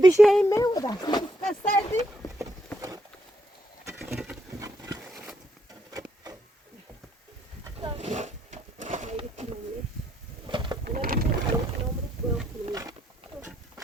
این میوه دست کردی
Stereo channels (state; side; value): normal; both; correlation 0.74